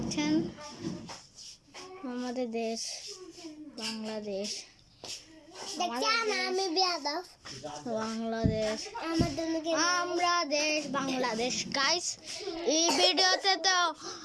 আমাদের দেশ বাংলাদেশ, বাংলাদেশ আমরা দেশ বাংলাদেশ। গাইস এই ভিডিওতে তো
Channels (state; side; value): identical; both; correlation 1.00